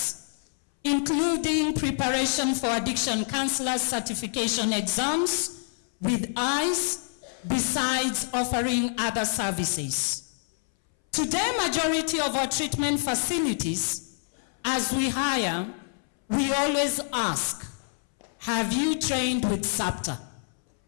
including preparation for addiction counselor certification exams with eyes, besides offering other services. Today, majority of our treatment facilities, as we hire, we always ask, have you trained with SAPTA?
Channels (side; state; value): right; silent; 60 dB below the other